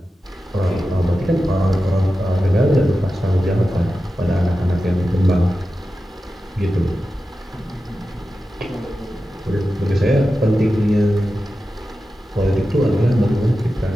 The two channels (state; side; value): normal; both; correlation 0.92